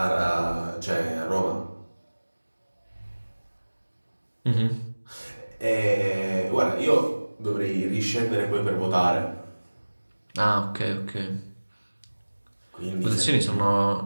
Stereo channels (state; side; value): inverted; both; correlation -1.00